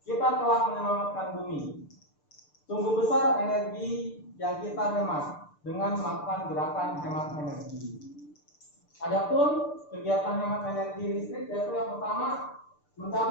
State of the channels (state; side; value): late; right; 6.8 ms